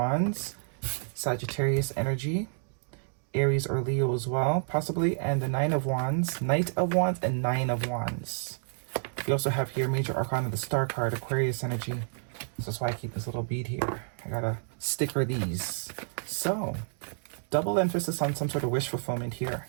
Sagittarius energy, Aries or Leo as well, possibly, and the Knight of Wands, and Nine of Wands. We also have here Major Arcana, the Star card, Aquarius energy. This is why I keep this little bead here. I gotta sticker these. So, double emphasis on some sort of wish fulfillment here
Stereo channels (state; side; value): silent; left; digital silence